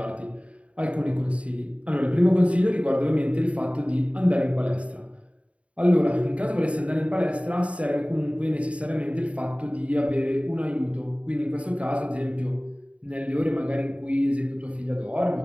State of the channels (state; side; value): late; left; 0.064 ms